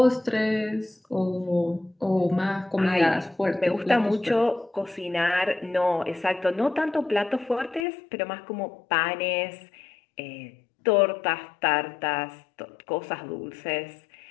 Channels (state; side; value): drops out; right; at 7.9 s